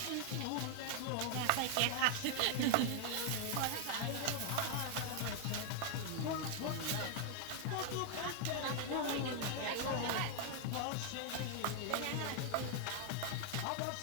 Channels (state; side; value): different; both; correlation 0.00